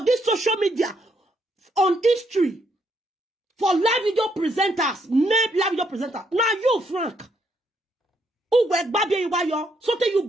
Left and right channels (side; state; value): both; normal; correlation 0.74